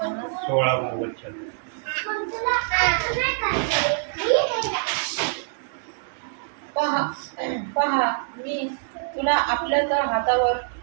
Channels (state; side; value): silent; left; digital silence